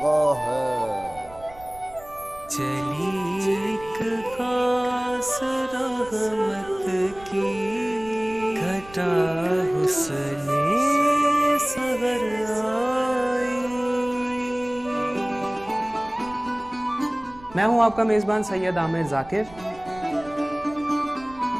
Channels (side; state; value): right; noise; rumble, 20 dB below the sound